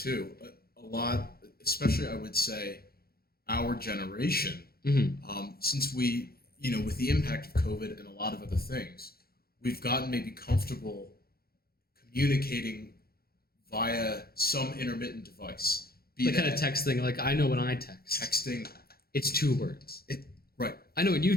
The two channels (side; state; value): right; late; 0.44 ms